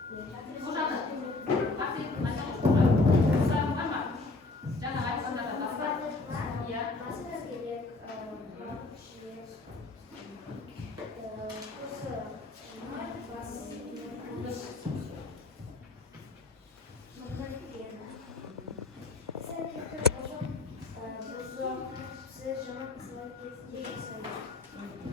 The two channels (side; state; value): right; quieter; 3.4 dB